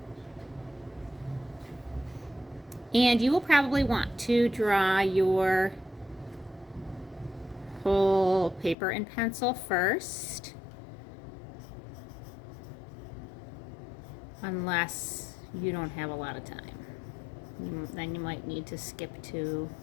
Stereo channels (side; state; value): right; drops out; at 8.8 s